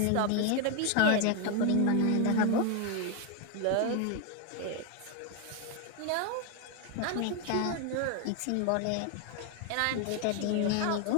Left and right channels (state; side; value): different; both; correlation 0.01